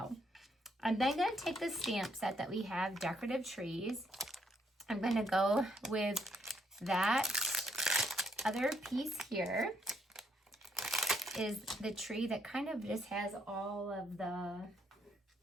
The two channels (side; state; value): both; normal; correlation 0.73